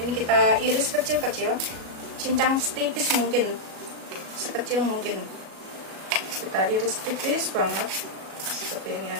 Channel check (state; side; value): late; left; 37 ms